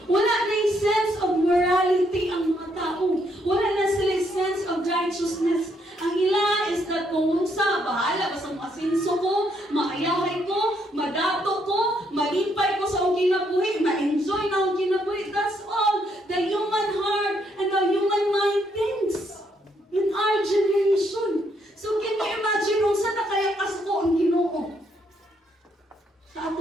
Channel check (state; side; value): normal; both; correlation 0.73